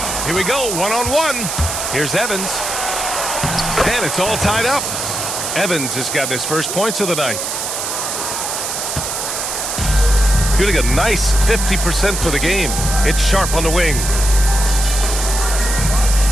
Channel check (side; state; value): right; noise; hiss, 3 dB below the sound